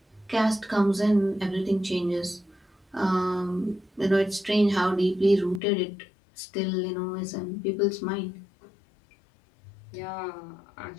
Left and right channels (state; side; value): drops out; right; at 5.6 s